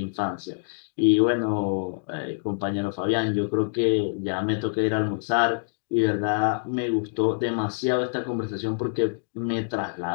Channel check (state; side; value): silent; right; digital silence